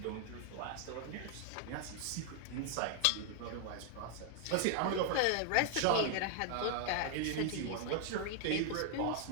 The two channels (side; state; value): both; different; correlation 0.00